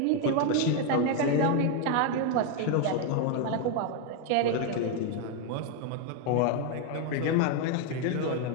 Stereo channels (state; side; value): different; both; correlation 0.01